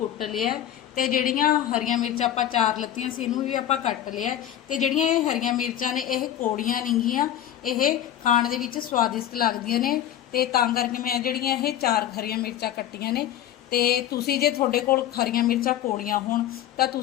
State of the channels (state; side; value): quieter; right; 11.2 dB